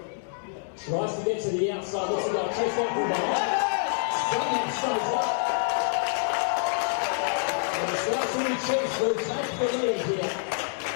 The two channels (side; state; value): right; silent; digital silence